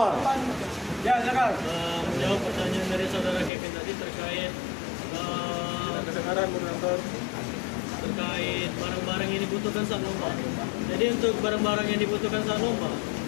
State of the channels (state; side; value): drops out; right; at 3.5 s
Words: Ya, silakan. Menjawab pertanyaan dari saudara Kevin tadi terkait Kedengaran moderator. terkait barang-barang yang dibutuhkan saat lomba. Jadi untuk barang-barang yang dibutuhkan saat lomba